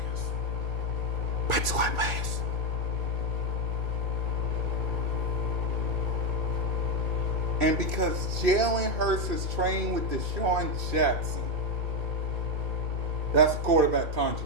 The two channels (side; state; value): left; late; 2.6 ms